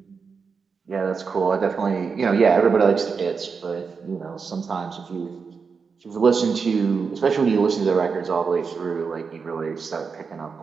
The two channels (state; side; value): quieter; left; 5.4 dB